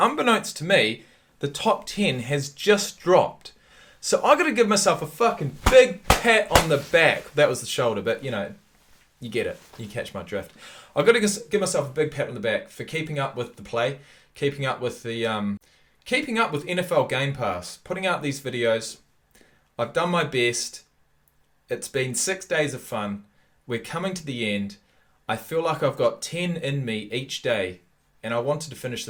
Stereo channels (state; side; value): identical; both; correlation 1.00